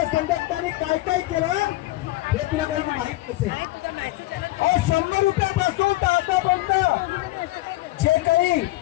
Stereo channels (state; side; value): quieter; right; 18.3 dB